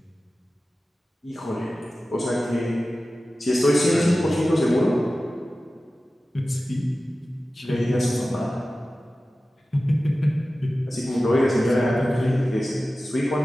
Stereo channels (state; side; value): normal; both; correlation 0.95